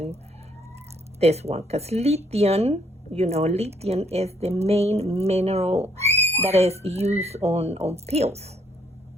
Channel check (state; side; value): normal; both; correlation 0.68